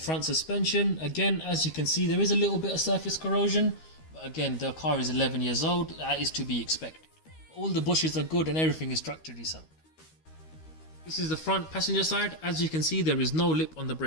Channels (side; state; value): right; late; 13 ms